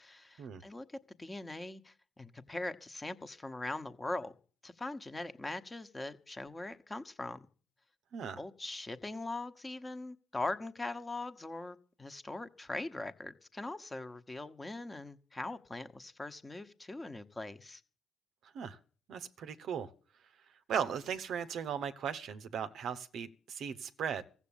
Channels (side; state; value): both; normal; correlation 0.80